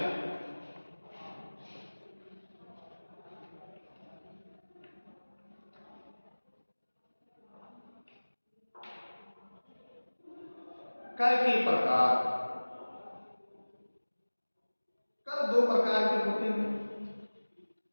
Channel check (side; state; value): both; inverted; correlation -1.00